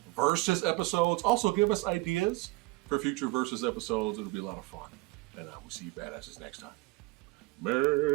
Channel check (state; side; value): quieter; left; 22.3 dB